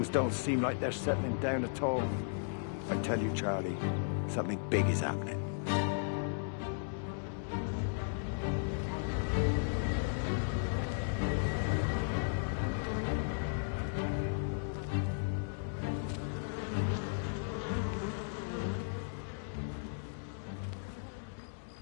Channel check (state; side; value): silent; right; digital silence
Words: don't seem like they're settling down at all. I tell you, Charlie, something big is happening.